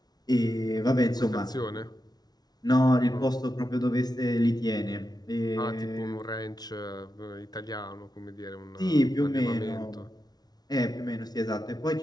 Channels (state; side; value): late; right; 0.19 ms